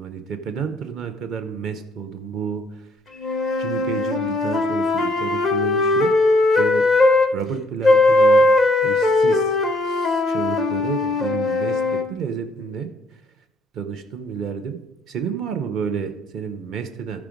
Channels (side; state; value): both; normal; correlation 0.66